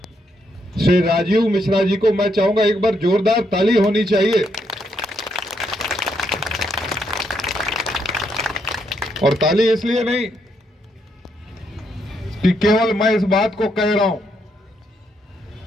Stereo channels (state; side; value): normal; both; correlation 0.77